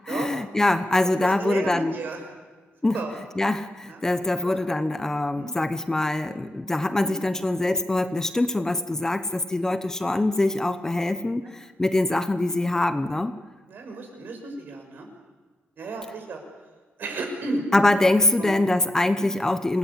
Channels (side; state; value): both; normal; correlation 0.85